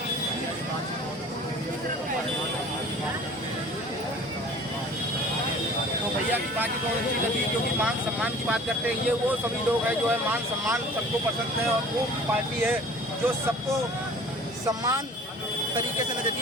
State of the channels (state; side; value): normal; both; correlation 0.46